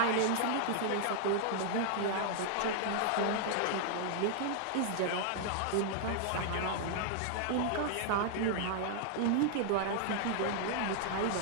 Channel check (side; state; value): both; different; correlation 0.00